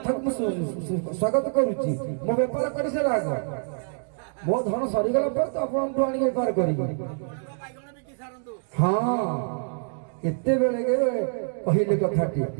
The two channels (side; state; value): left; silent; digital silence